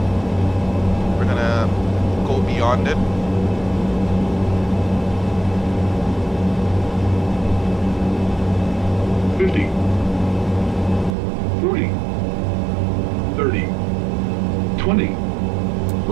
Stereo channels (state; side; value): drops out; left; at 11.2 s